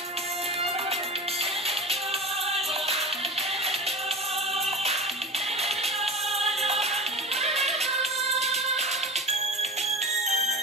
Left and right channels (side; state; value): both; normal; correlation 0.34